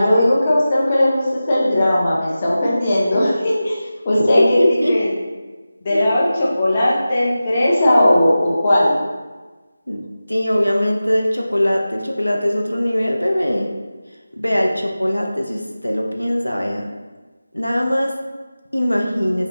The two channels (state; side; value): inverted; both; correlation -0.95